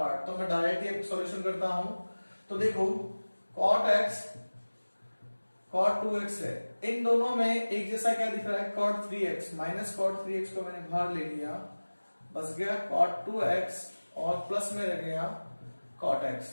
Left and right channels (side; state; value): both; inverted; correlation -1.00